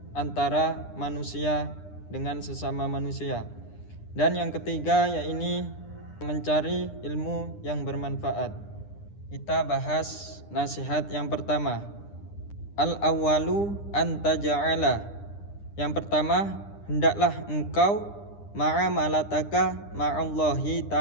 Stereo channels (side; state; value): right; late; 9.9 ms